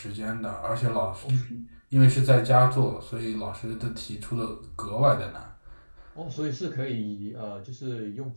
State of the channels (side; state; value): both; inverted; correlation -1.00